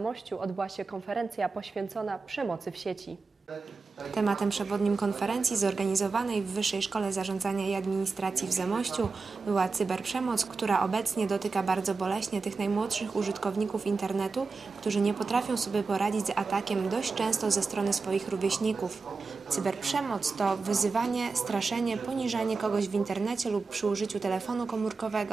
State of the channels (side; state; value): left; quieter; 4.3 dB